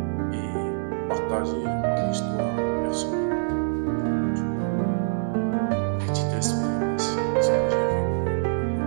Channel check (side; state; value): left; silent; 62 dB below the other